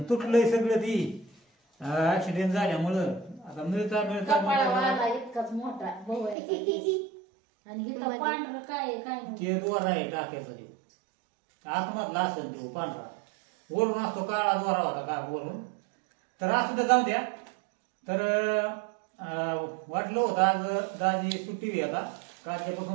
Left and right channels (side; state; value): left; drops out; at 6.4 s